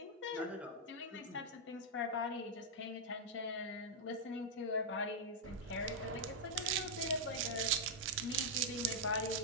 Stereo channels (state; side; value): normal; both; correlation -0.06